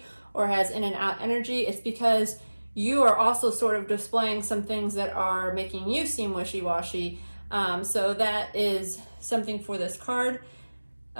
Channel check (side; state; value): both; inverted; correlation -1.00